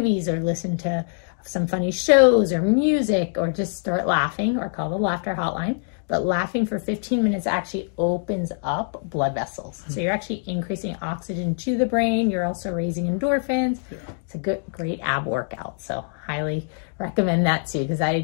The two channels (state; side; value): silent; right; 61 dB below the other